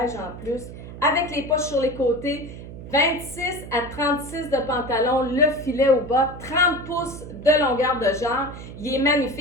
en plus. Avec les poches sur les côtés. 26 à 36 de pantalon. Le filet au bas. 30 pouces de longueur de jambe. Il est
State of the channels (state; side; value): noise; right; hum, 13 dB below the sound